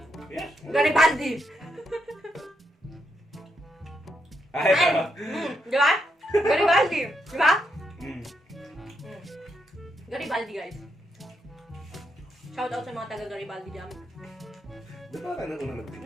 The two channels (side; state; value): both; normal; correlation 0.80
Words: Yes. Garibaldi. Ay, Ay! Di ba? Garibaldi. Di ba? Mm. Garibaldi, guys. Shout out sa mga taga Garibaldi dyan. Di ba ka na una nag-date?